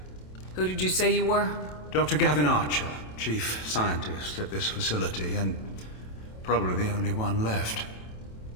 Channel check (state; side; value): late; right; 27 ms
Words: Who did you say you were? Dr. Gavin Archer, chief scientist at this facility, and probably the only one left.